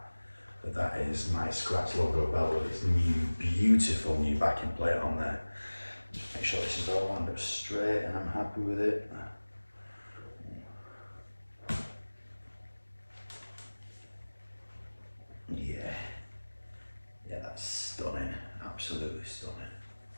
But that is my Scratch logo belt with its new, beautiful new backing plate on there. Just make sure this is all lined up straight and I'm happy with it. Yeah, that's stunning, absolutely stunning.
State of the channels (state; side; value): inverted; both; correlation -1.00